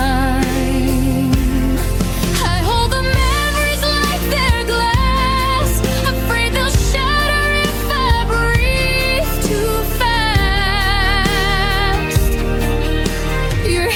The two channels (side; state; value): both; identical; correlation 1.00